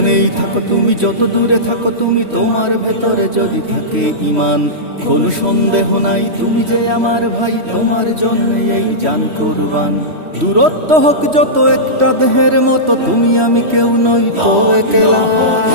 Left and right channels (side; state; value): left; late; 3.1 ms